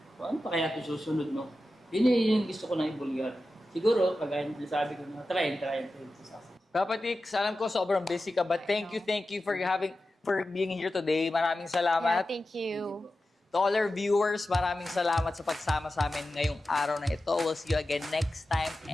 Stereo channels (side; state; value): both; normal; correlation 0.93